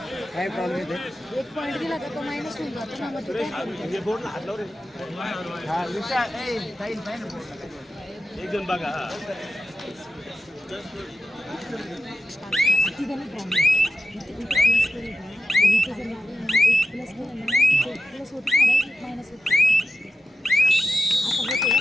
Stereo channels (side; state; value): both; normal; correlation 0.92